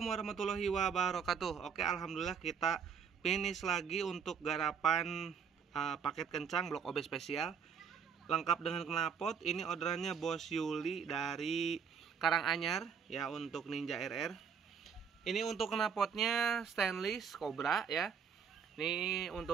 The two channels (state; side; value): quieter; left; 6.8 dB